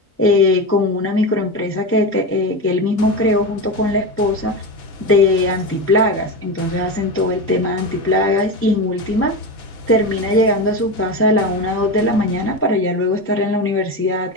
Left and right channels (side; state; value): both; normal; correlation 0.20